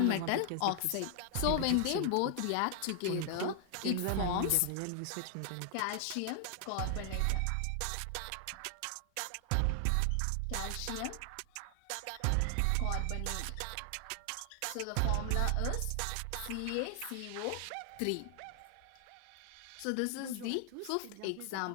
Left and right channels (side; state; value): both; different; correlation 0.00